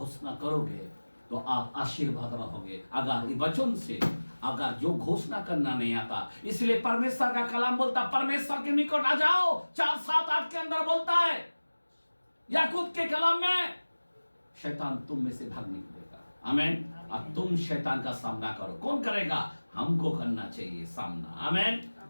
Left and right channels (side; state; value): both; inverted; correlation -1.00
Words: करोगे तो आप आशीर्वाद रहोगे। अगर ये वचन से अगर जो घोषणा करना नहीं आता, इसलिए परमेश्वर का कलाम बोलता, परमेश्वर के निकट आ जाओ। 4:7-8 के अंदर बोलता है याकूब के कलाम में, शैतान तुम में से भाग निकलेगा। आमीन। अब तुम शैतान का सामना करो। कौन करेगा? हमको करना चाहिए सामना। आमीन।